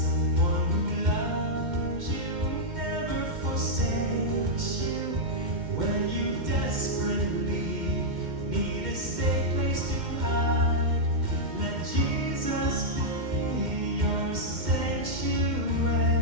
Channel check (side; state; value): left; late; 2.1 ms